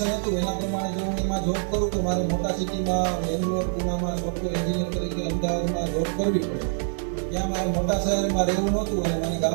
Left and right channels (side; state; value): left; silent; 61 dB below the other